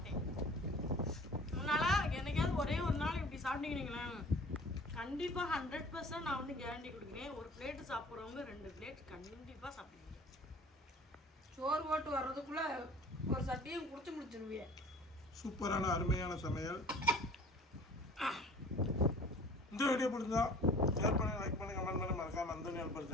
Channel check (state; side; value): normal; both; correlation 0.47